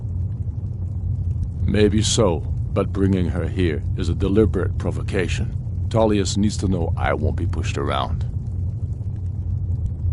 Maybe so, but bringing her here is a deliberate provocation. Tullius needs to know I won't be pushed around.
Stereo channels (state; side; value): identical; both; correlation 1.00